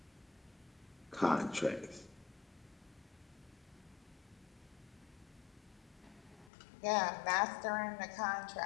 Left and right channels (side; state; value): right; drops out; at 6.5 s